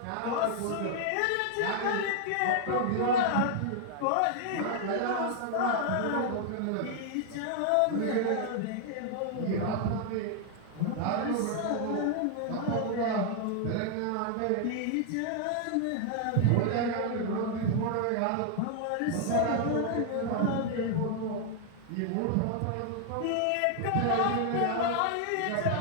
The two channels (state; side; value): different; both; correlation 0.00